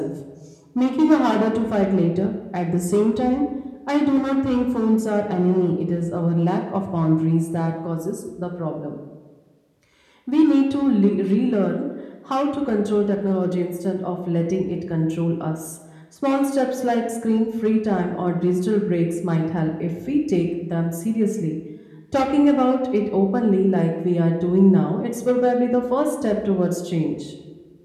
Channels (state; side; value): identical; both; correlation 1.00